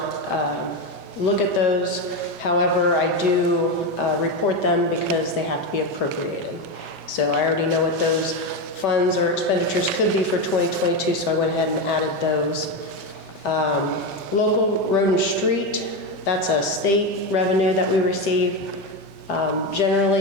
look at those. However, I do report them because they have to be appropriated. So I already know what those funds or expenditures could be for 2022, so I went ahead and added those. Local road and street, that's a state revenue that we receive.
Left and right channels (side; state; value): both; normal; correlation 0.13